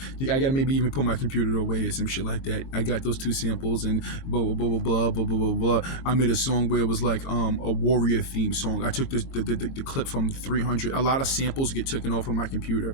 maybe even put my computer away or some shit like that. I got those 2 samples and blah blah blah blah blah blah blah blah. I made a song where it was like a warrior theme song. I took the clip from 300. A lot of samples get taken off of my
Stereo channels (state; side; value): late; right; 22 ms